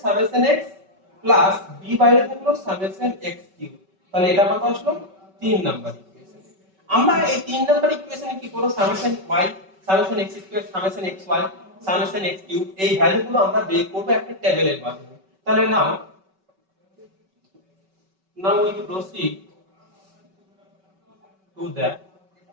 সামেশন x প্লাস b বাইরে থাকলো সামেশন x কিউব। তাহলে এটা কত আসলো 3 নাম্বার ইকুয়েশন। আমরা এই 3 নাম্বার ইকুয়েশনে কি করব, summation y summation x square summation xy summation x cube এই ভ্যালুগুলো আমরা বের করব একটা টেবিলের মাধ্যমে। তাহলে now we proceed to the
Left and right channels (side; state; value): left; late; 5.3 ms